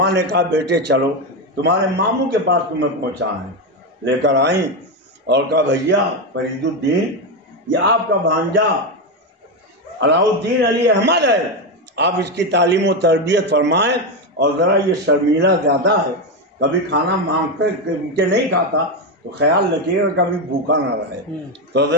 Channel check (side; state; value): both; normal; correlation 0.10